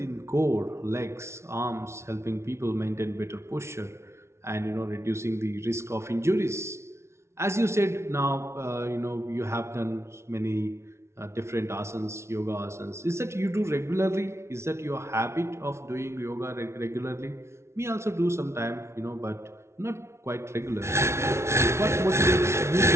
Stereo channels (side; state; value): left; late; 0.13 ms